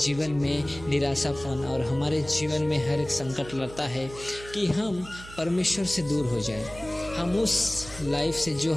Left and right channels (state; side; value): noise; right; hum, 16 dB below the sound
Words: में निराशापन और हमारे जीवन में हर एक संकट लाता है कि हम परमेश्वर से दूर हो जाएं। हम उस लाइफ से जो